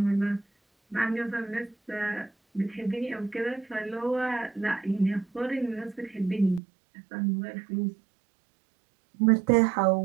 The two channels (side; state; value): left; drops out; at 6.6 s